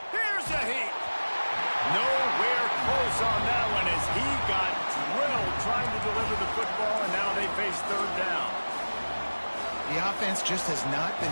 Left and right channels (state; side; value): inverted; both; correlation -1.00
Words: Here's a heat. Nowhere close on that one as he got drilled trying to deliver the football, and now they face 3rd down. The offense just has not been